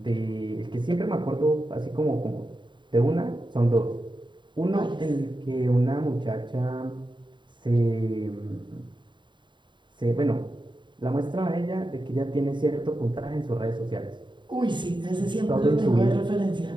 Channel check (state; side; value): late; left; 0.23 ms